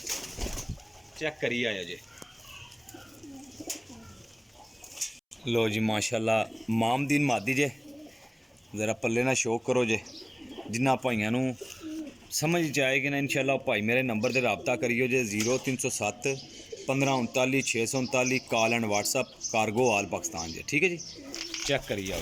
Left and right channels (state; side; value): identical; both; correlation 1.00